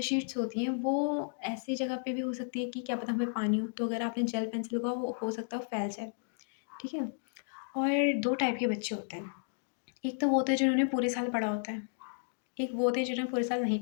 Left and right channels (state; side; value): silent; right; digital silence